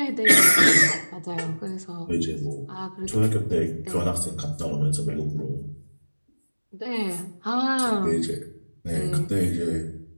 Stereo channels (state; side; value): inverted; both; correlation -1.00